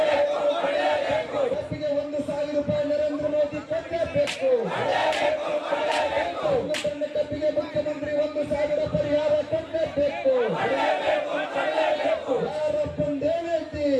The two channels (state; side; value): identical; both; correlation 1.00